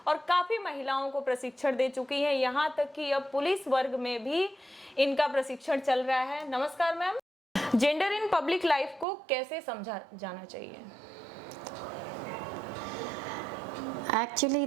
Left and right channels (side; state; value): left; drops out; at 9.1 s